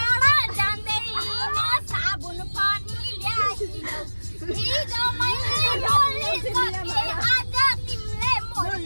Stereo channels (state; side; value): inverted; both; correlation -1.00